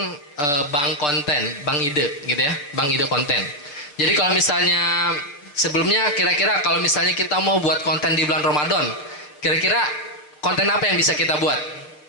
bank konten, bank ide gitu ya, bank ide konten. Jadi kalau misalnya sebelumnya kira-kira kalau misalnya kita mau buat konten di bulan Ramadan, kira-kira konten apa yang bisa kita buat?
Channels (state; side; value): late; right; 6.8 ms